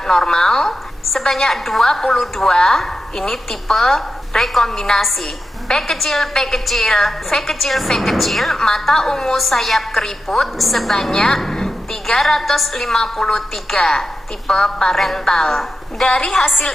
normal, sebanyak 22, ini tipe rekombinasi. P kecil, V kecil, mata ungu sayap keriput, sebanyak 353, tipe parental. Dari hasil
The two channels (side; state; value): both; normal; correlation 0.90